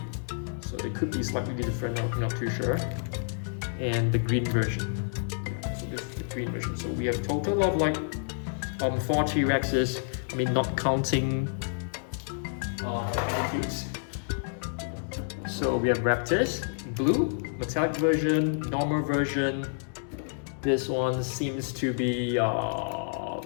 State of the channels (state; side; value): silent; right; digital silence